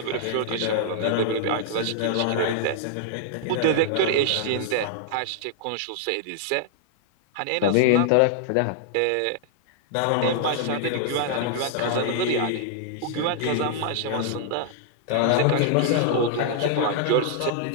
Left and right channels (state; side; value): different; both; correlation -0.01